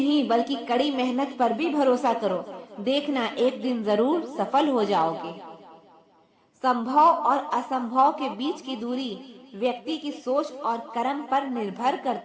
बल्कि कड़ी मेहनत पर भी भरोसा करो, देखना एक दिन जरूर सफल हो जाओगे। संभव और असंभव के बीच की दूरी व्यक्ति की सोच और कर्म पर निर्भर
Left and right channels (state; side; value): identical; both; correlation 1.00